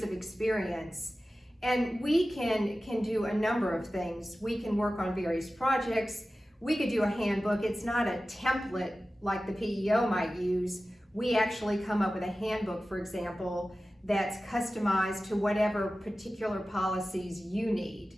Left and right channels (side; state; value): both; normal; correlation 0.95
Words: of experience, and we can do a number of things. We can work on various projects. We could do a handbook. It's not a template like the PEO might use. We actually come up with a handbook, for example, that's customized to whatever particular policies you need.